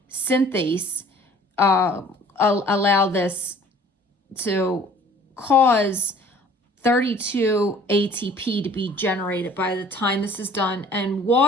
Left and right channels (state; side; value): normal; both; correlation 0.52